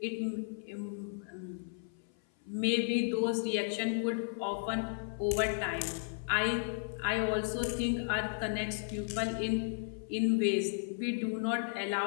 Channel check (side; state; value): right; silent; 55 dB below the other